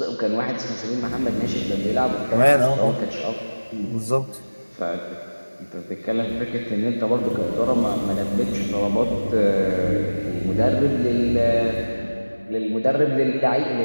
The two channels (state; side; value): inverted; both; correlation -1.00